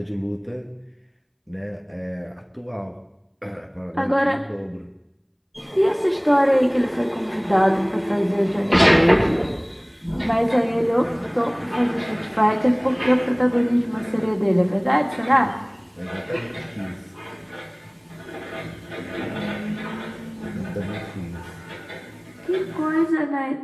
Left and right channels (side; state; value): both; identical; correlation 1.00